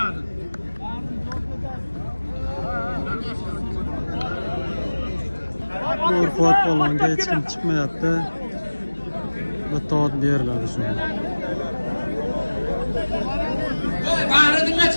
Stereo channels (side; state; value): both; inverted; correlation -1.00